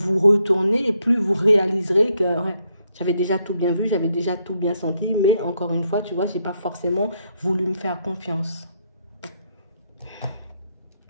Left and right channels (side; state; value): both; inverted; correlation -0.75